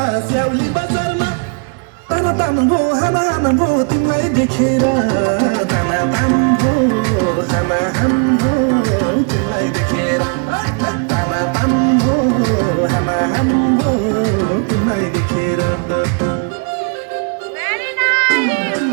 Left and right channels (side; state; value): left; quieter; 36.6 dB